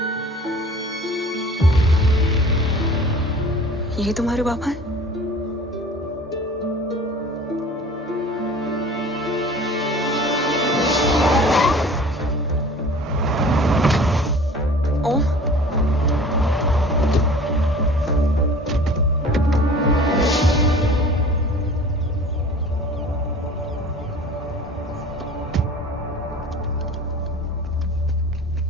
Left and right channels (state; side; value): normal; both; correlation 0.44